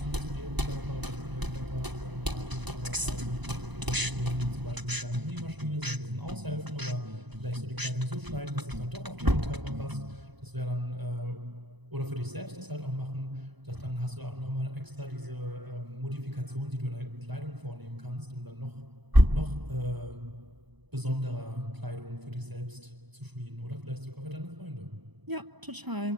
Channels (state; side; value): late; left; 1.0 ms